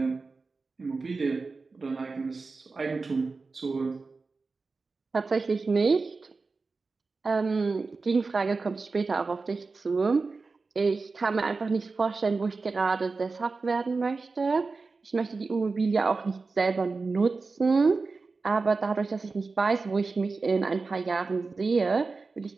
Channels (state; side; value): quieter; left; 4.1 dB